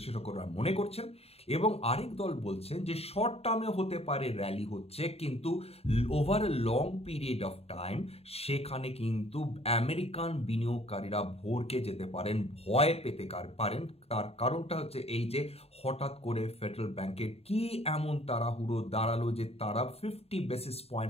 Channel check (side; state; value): right; late; 0.29 ms